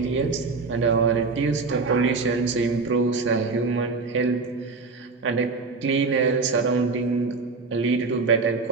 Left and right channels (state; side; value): quieter; left; 4.1 dB